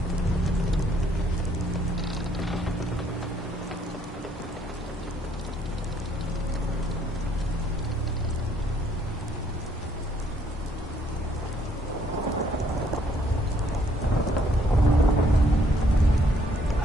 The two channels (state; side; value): normal; both; correlation 0.66